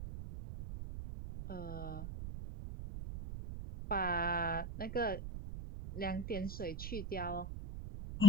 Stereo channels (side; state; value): right; noise; rumble, 5 dB below the sound